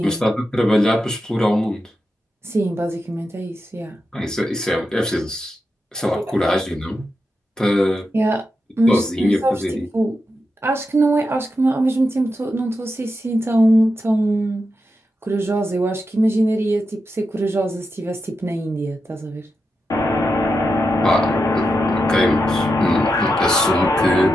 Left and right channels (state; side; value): normal; both; correlation 0.87